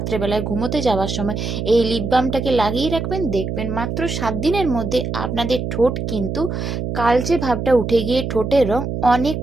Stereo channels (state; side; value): noise; right; hum, 3 dB below the sound